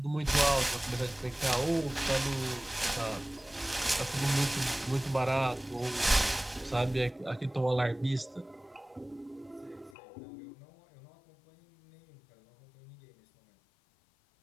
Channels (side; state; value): right; drops out; at 10.0 s